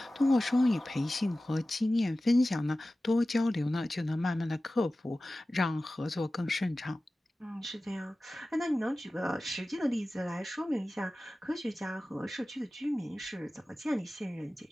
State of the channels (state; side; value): normal; both; correlation 0.96